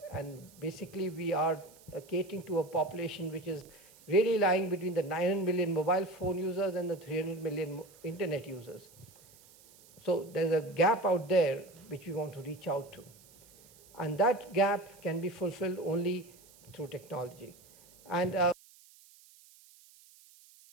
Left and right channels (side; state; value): right; noise; hiss, 25 dB below the sound